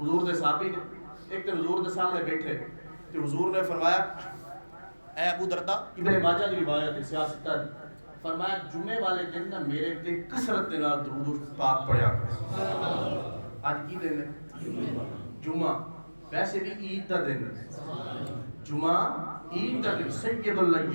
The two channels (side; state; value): both; inverted; correlation -1.00